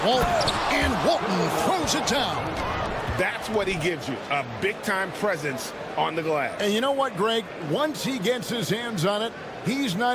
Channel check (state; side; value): identical; both; correlation 1.00